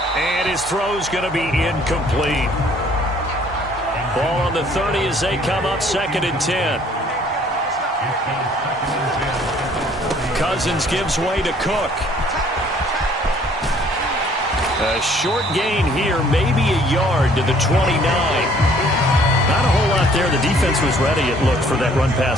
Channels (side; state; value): both; normal; correlation 0.59